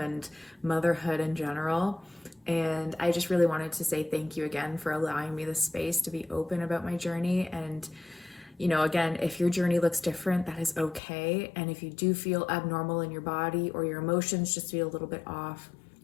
and motherhood in general. And I just really wanted to say thank you again for allowing me the space to be open about my journey. And again, if your journey looks different, that is okay. And if you do feel abnormal in your body or your emotions just feel a little bit off,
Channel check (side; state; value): right; drops out; at 11.0 s